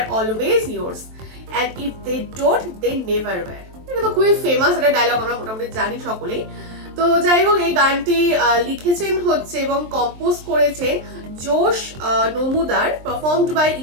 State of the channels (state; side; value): late; left; 23 ms